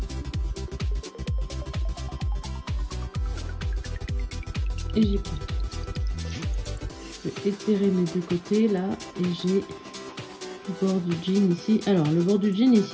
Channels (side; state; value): both; identical; correlation 1.00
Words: Et j'y prends. Je vais étirer mes deux côtés là et j'ai le bord du jean ici. Alors le bord du jean